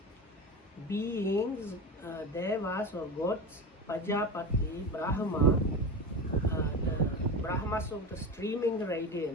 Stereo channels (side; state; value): both; normal; correlation 0.25